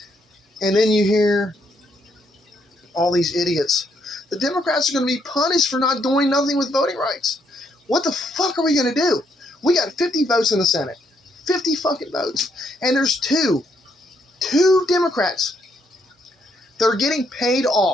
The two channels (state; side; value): normal; both; correlation 0.74